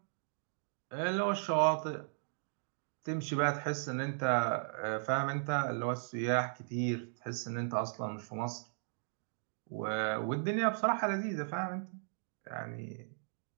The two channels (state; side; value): silent; left; digital silence